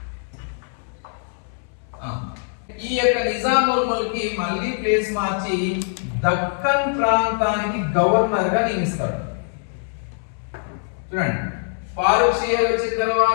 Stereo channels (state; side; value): silent; right; 61 dB below the other